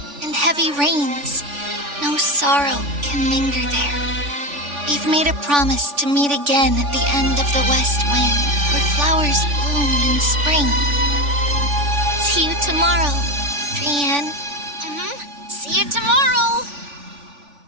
and heavy rains. No sorrow can linger there. We've made a promise to meet again at the end of the west wind, where flowers bloom in spring. See you tomorrow, Brienne. See you tomorrow.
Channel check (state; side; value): late; left; 3.5 ms